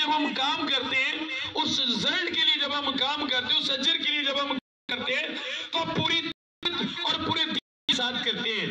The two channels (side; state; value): both; identical; correlation 1.00